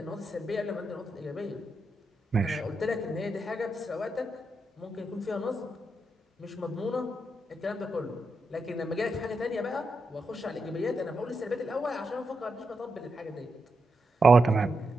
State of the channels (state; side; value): normal; both; correlation 0.85